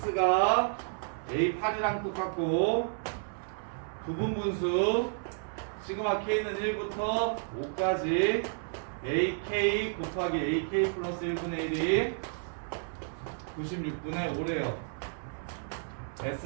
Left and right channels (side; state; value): left; silent; 57 dB below the other